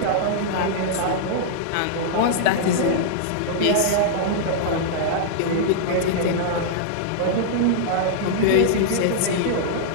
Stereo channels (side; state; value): both; different; correlation -0.02